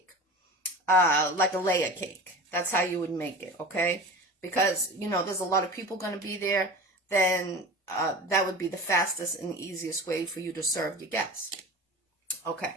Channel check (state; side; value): normal; both; correlation 0.34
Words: like a layer cake. That's how you would make it, okay? Because, you know, there's a lot of people going to be there, then that would be the fastest and easiest way for you to serve your guests.